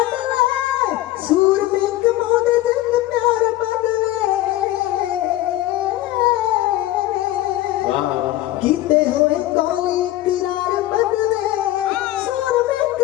सूर में कमौदे जिंद प्यार बदले। किते होए कोले इकरार बदले, सूर में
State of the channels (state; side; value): quieter; right; 15.3 dB